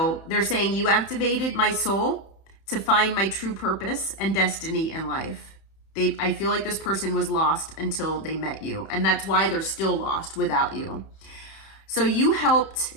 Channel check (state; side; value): late; right; 31 ms